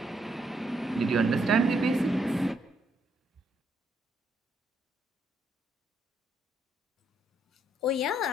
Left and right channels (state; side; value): normal; both; correlation 0.74